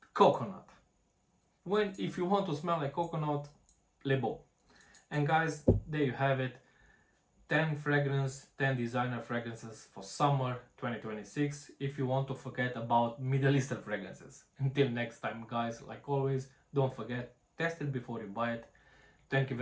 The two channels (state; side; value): identical; both; correlation 1.00